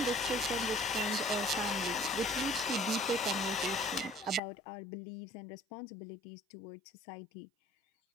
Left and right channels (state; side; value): drops out; right; at 4.4 s